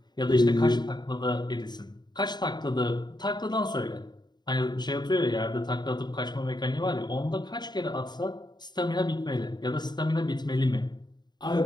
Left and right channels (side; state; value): right; late; 0.21 ms